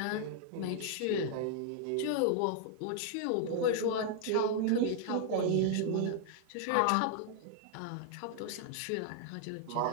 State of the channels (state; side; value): different; both; correlation 0.00